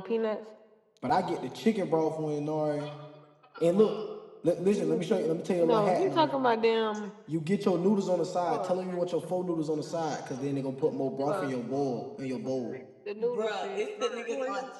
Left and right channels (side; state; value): both; identical; correlation 1.00